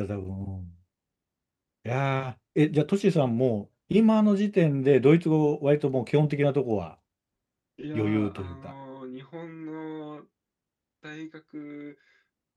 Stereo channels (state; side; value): identical; both; correlation 1.00